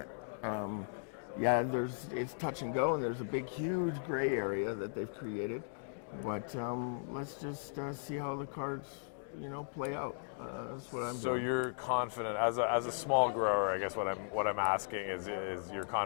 It's touch and go, and there's a big, huge gray area that they've created. But let's just see how the cards, play out. That's what I'm doing. So you're confident, as a small grower, I guess what I'm asking is you're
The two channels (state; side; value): silent; right; digital silence